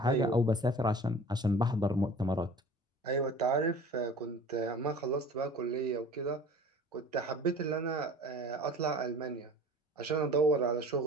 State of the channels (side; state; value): both; normal; correlation 0.44